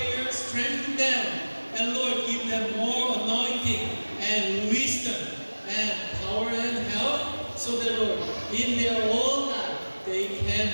strengthen them. And Lord, give them more anointing and wisdom and power and help. So that, Lord, in their whole life, they can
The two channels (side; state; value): both; inverted; correlation -1.00